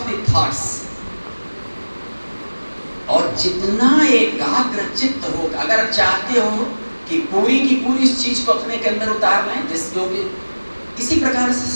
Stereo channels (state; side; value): inverted; both; correlation -1.00